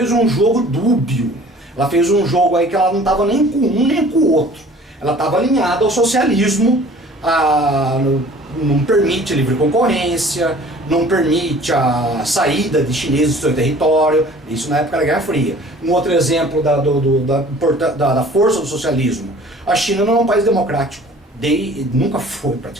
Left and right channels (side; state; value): both; normal; correlation 0.49